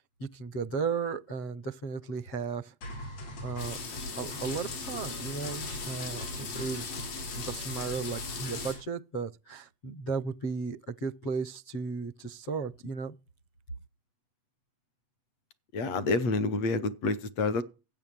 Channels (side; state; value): right; late; 8.1 ms